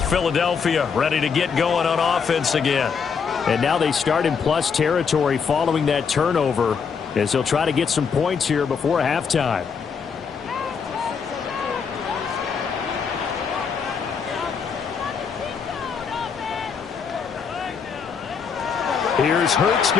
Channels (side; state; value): right; quieter; 6.1 dB